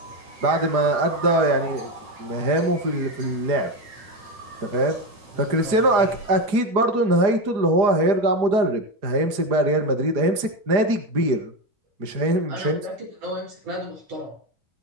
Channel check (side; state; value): left; late; 4.9 ms